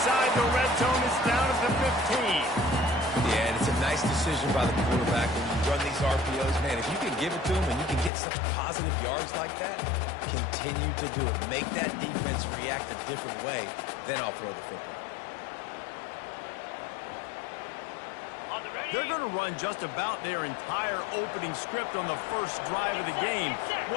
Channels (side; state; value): right; drops out; at 8.1 s